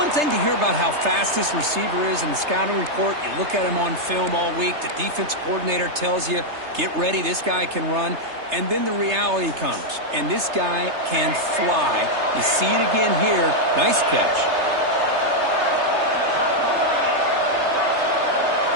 thing to hear about how fast this receiver is in the scouting report. You look at him on film all week. The defense coordinator tells you, get ready, this guy can run. And then the reality comes, and this guy can fly. You see it again here. Nice catch.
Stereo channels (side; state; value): left; late; 3.3 ms